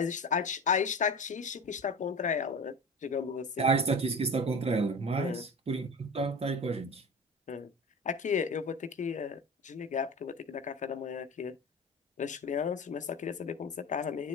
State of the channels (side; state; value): both; normal; correlation 0.32